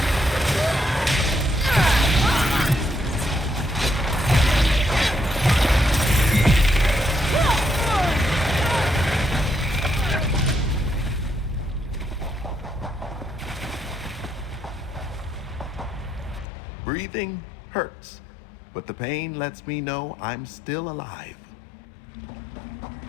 Breathing hurts, but the pain lets me know I'm still alive.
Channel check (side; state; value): right; drops out; at 16.4 s